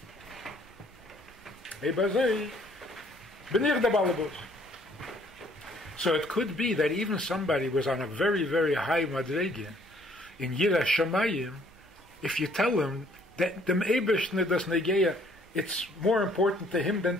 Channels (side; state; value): both; normal; correlation 0.62